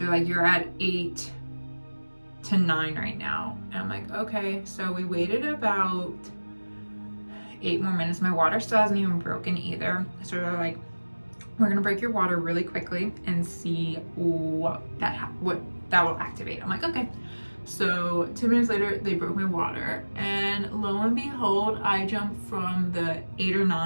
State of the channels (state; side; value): inverted; both; correlation -1.00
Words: like, you're at 8 to 9 right now. And I'm like, okay. So we waited about 8 more minutes. My water still hasn't even broken either. So they're like, we're gonna break your water really quickly and see what that will activate. I'm like, okay. So 2 minutes later, they broke my water, and lo and behold, I jumped from the 8 or